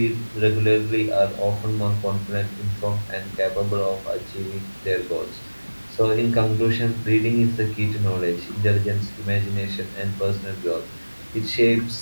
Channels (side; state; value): both; inverted; correlation -1.00